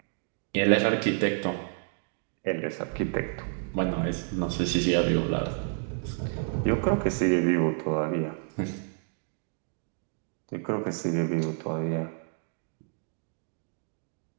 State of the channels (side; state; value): left; silent; 58 dB below the other